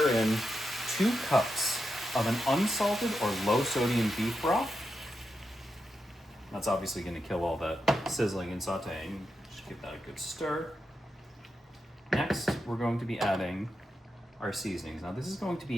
in 2 cups of an unsalted or low-sodium beef broth. That's obviously going to kill all that sizzling and sauteing. Just give that a good stir. Next, we're going to be adding our seasonings. Now, this is going to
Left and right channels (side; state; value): both; normal; correlation 0.87